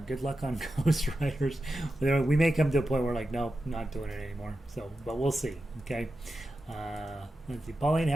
Good luck on Ghost Riders. We may come to a point where nope, not doing it anymore. So, but we'll see. Okay. Let's see. Pauline,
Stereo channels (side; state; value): both; normal; correlation 0.91